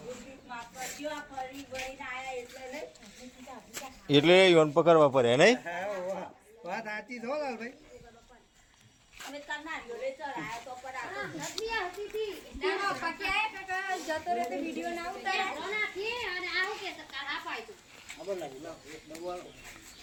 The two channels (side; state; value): both; identical; correlation 1.00